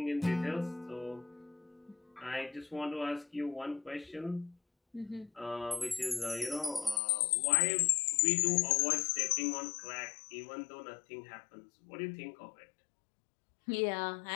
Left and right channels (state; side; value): drops out; right; at 7.0 s